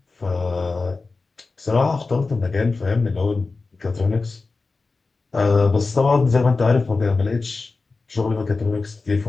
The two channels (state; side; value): quieter; right; 3.9 dB